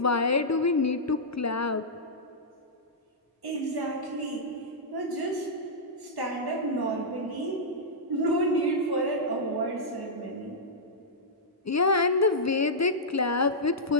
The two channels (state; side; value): normal; both; correlation -0.11